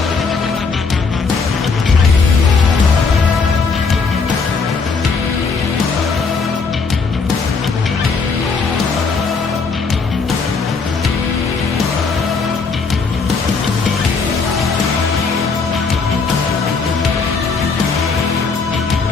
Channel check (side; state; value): right; quieter; 4.8 dB